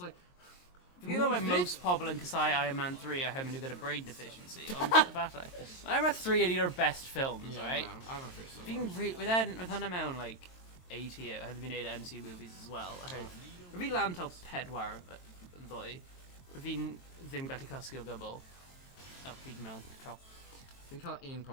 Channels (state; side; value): late; right; 22 ms